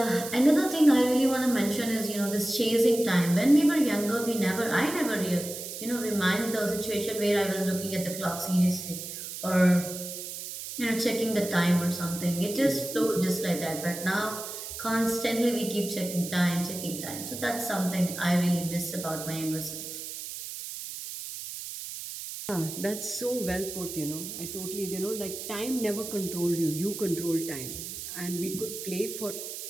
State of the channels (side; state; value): right; noise; hiss, 8 dB below the sound